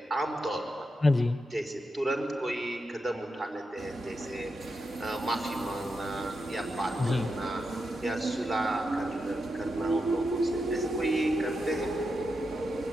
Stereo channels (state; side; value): normal; both; correlation 0.86